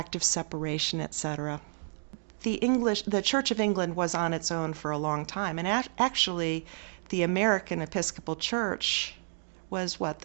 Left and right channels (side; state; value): left; silent; digital silence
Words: of Separation, etc. The Church of England was on its own for a long time, and actually the American Episcopal Church was